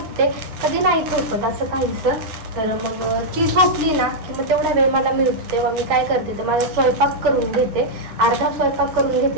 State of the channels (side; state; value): left; late; 8.4 ms